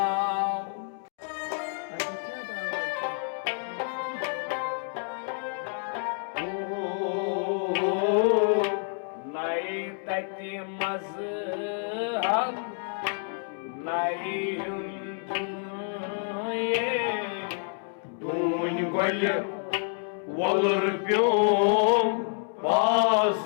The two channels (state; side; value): silent; right; 59 dB below the other